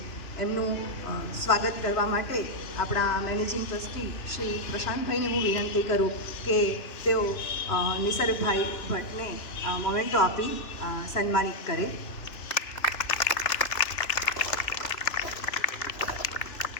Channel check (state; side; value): late; right; 3.0 ms